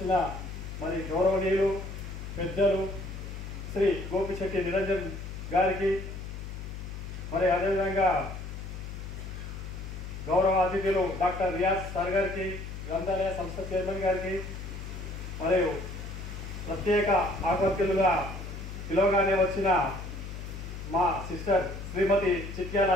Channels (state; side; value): noise; left; hum, 9 dB below the sound